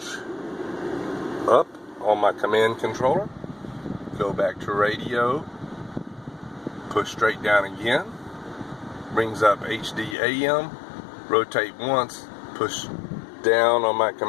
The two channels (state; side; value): drops out; right; at 10.2 s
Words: up on my command controller, go back to radio, push straight down again, brings up HD AM, rotate once, push down on my